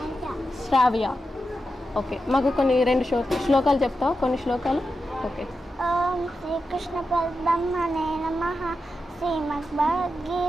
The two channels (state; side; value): normal; both; correlation 0.89